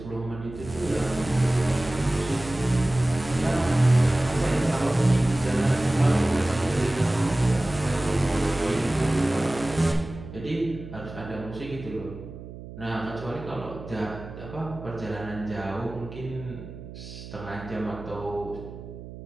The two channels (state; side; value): noise; right; hum, 13 dB below the sound